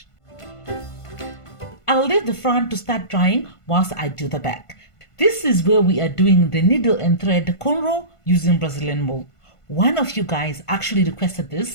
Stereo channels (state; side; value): late; right; 1.5 ms